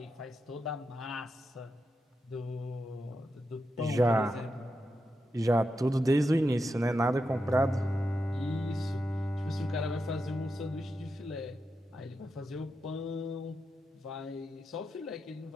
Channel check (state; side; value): normal; both; correlation 0.87